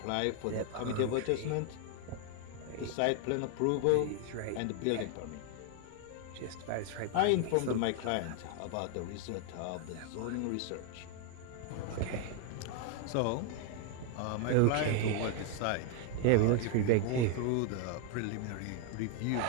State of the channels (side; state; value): both; different; correlation 0.00